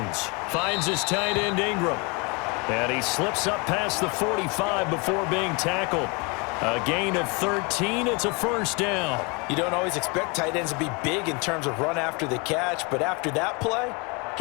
finds his tight end Ingram. And he slips up past the 45 before being tackled. A gain of 13, it's a 1st down. You don't always expect tight ends to be big in terms of run after the catch, but after that play,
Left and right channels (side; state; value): right; quieter; 30.4 dB